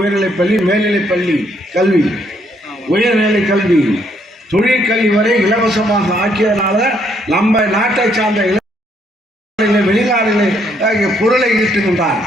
பள்ளி, மேல்நிலைப் பள்ளி கல்வி, உயர்நிலை கல்வி, தொழிற்கல்வி வரை இலவசமாக ஆக்கியதனால நம்ம நாட்டை சார்ந்த வெளிநாடுகளில் பொருளை ஈட்டுகின்றார்.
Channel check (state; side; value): normal; both; correlation 0.70